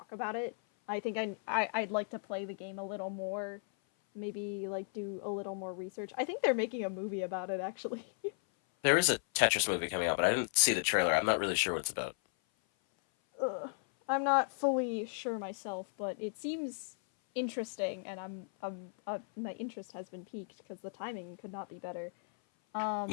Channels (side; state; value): right; silent; 54 dB below the other